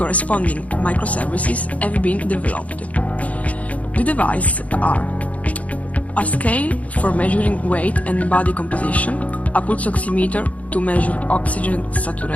microservices have been developed. The devices are a scale for measuring weight and body composition, a pulse oximeter to measure oxygen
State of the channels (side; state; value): right; late; 0.068 ms